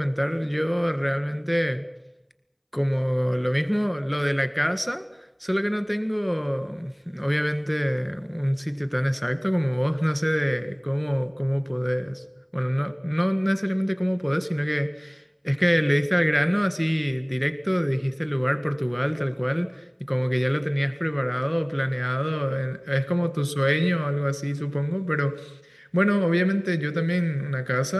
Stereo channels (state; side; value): identical; both; correlation 1.00